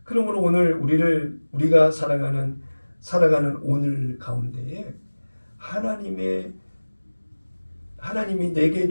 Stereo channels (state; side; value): inverted; both; correlation -1.00